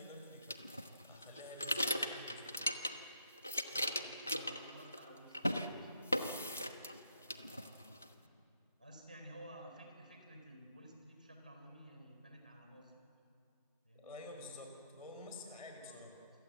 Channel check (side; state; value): both; inverted; correlation -0.75